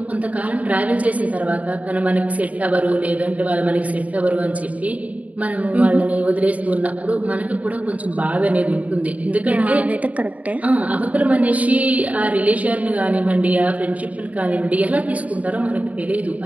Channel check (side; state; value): left; late; 0.070 ms